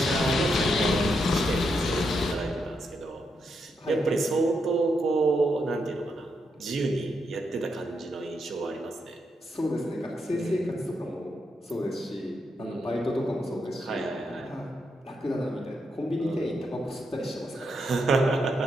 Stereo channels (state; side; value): normal; both; correlation 0.82